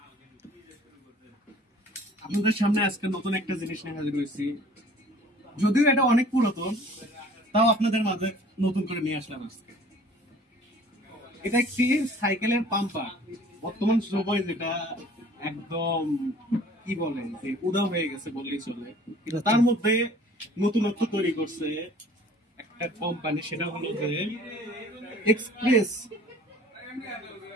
আপনাদের সামনে আজকে নতুন একটা জিনিস নিয়ে হাজির হয়েছি। যদিও এটা অনেক পুরাতন, তাও আপনাদের মাঝে নতুন করে নিয়ে আসলাম আজকে। এটা একটি সাইকেলের পাম্পার। বর্তমান সময় যেটা একদম কি বলে যে উদাও হয়ে গেছে বললেই চলে, কিন্তু তার মধ্যে নতুনত্ব তৈরি করছে একটা কোম্পানি, সেটা হলো যে এক্সপ্রেস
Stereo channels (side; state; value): both; normal; correlation 0.50